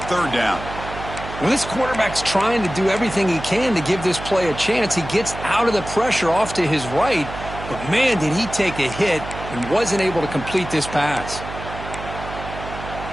3rd down. Well, this quarterback's trying to do everything he can to give this play a chance. He gets out of the pressure off to his right, but man, did he take a hit and wasn't able to complete this pass.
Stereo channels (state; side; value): noise; right; hum, 10 dB below the sound